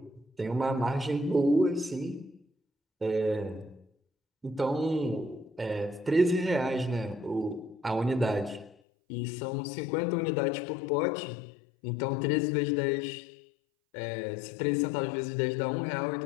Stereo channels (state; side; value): drops out; right; at 8.8 s